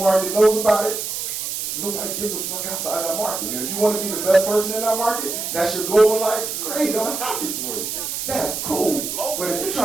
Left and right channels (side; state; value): right; noise; hiss, 4 dB below the sound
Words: knows about it, nobody gives a fuck outside that market. And if you want to be the best person in that market, that's your goal in life, great, I'm happy for you. That's cool. But if you're